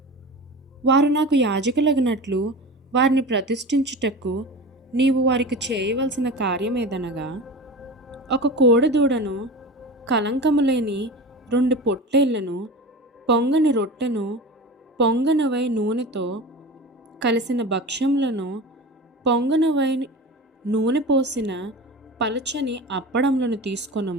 వారు నాకు యాజకులగునట్లు వారిని ప్రతిష్ఠించుటకు నీవు వారికి చేయవలసిన కార్యమేదనగా, ఒక కోడెదూడను, కలంకము లేని 2 పొట్టేళ్లను, పొంగని రొట్టెను, పొంగనవై నూనెతో కలిసిన భక్ష్యములను, పొంగనవై నూనె పోసిన పలచని అప్పడములను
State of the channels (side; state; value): both; normal; correlation 0.31